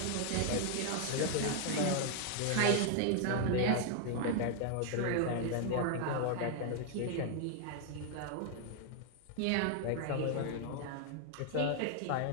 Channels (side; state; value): both; different; correlation 0.00